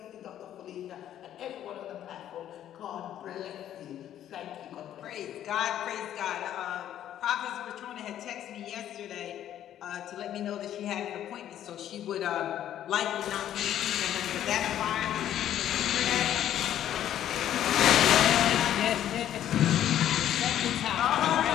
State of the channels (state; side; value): quieter; right; 11.2 dB